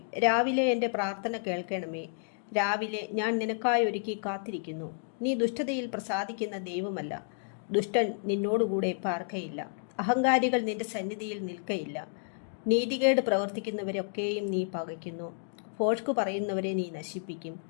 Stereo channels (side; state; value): right; silent; digital silence